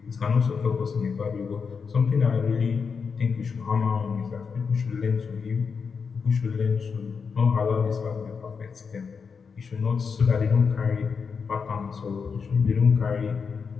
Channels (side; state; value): right; quieter; 5.7 dB